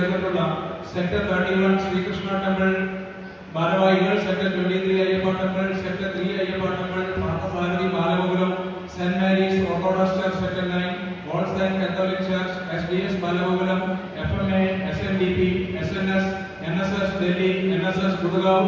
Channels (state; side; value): identical; both; correlation 1.00